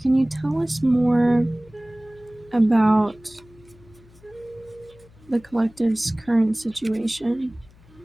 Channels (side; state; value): left; noise; hum, 26 dB below the sound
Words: can you tell us more about the collective's current situation?